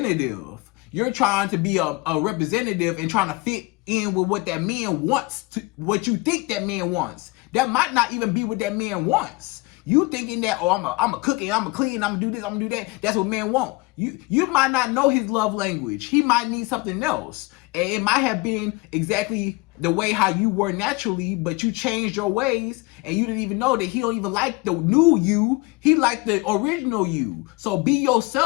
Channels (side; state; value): right; quieter; 24.5 dB